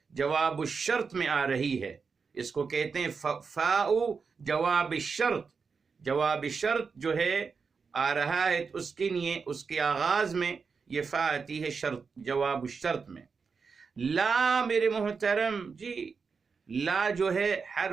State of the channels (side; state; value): left; quieter; 5.3 dB